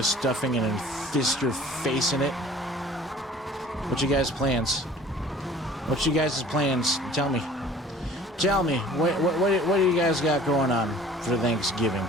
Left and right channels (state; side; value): normal; both; correlation 0.49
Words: stuffing and then fist your face in it? What you guys' plans? What you guys' plans? Tell me. Tell me. What do you guys got going on for Thanksgiving?